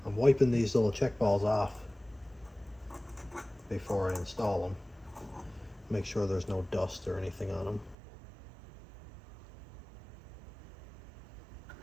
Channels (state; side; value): drops out; left; at 8.0 s